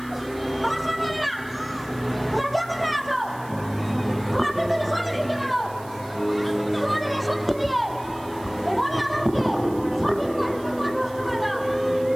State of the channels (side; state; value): right; noise; hiss, 22 dB below the sound